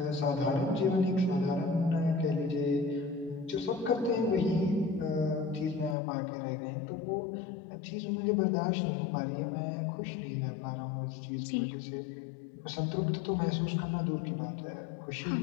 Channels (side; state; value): right; drops out; at 6.0 s